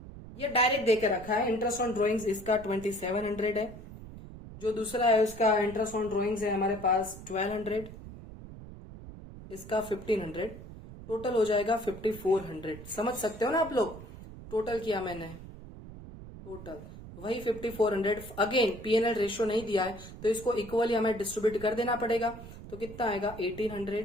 ये डायरेक्ट देके रखा है। इंटरेस्ट ऑन ड्रॉइंग्स इसका 2700 है। जो दूसरा है उसका इंटरेस्ट ऑन ड्रॉइंग्स है हमारे पास 1200, इसका 1500, टोटल हो जाएगा 5400। समझ सकते हो ना आप लोग? टोटल किया मैंने, टोटल वही 5400। अगेन पीएनएल रेशियो नहीं दिया है तो इसको इक्वली हमें डिस्ट्रीब्यूट कर देना पड़ेगा। तो कितना आएगा? 1800,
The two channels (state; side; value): noise; right; rumble, 14 dB below the sound